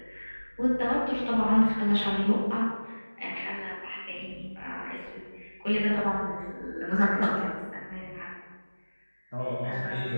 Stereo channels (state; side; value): inverted; both; correlation -1.00